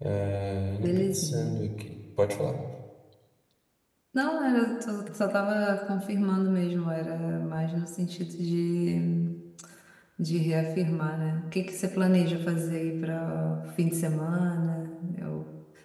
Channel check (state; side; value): identical; both; correlation 1.00